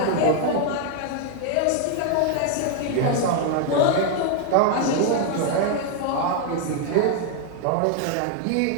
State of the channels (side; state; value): both; different; correlation 0.00